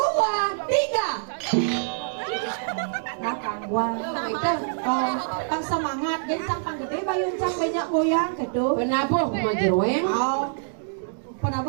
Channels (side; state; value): left; silent; digital silence